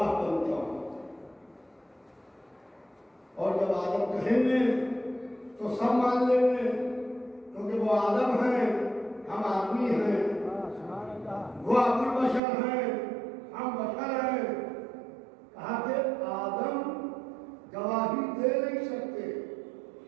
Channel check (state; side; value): drops out; left; at 12.4 s